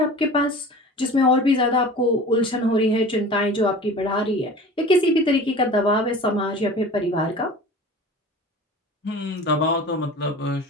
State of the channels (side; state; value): both; normal; correlation 0.39